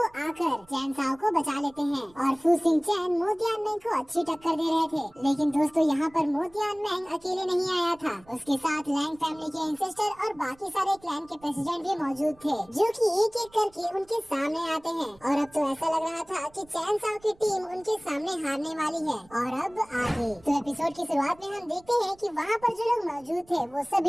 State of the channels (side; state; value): right; noise; rumble, 28 dB below the sound